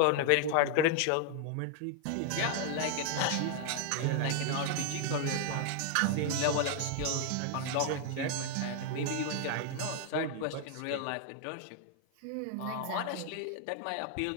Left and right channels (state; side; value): different; both; correlation 0.00